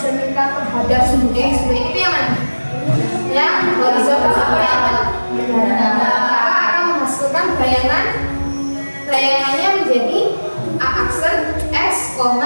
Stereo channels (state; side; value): inverted; both; correlation -1.00